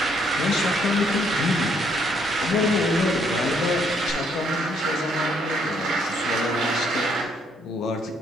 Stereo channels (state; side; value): normal; both; correlation 0.69